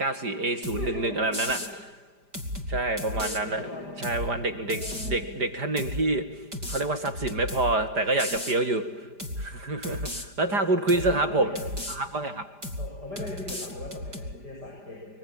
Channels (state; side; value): late; left; 5.0 ms